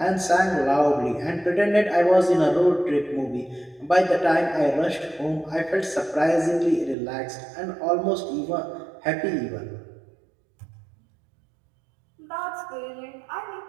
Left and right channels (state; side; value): drops out; left; at 7.0 s